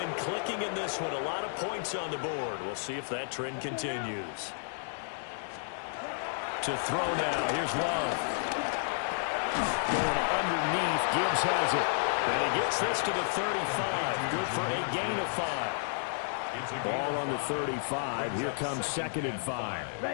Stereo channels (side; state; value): right; silent; digital silence